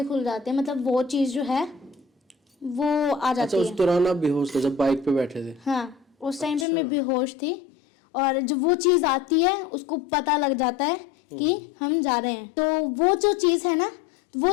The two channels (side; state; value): right; drops out; at 6.7 s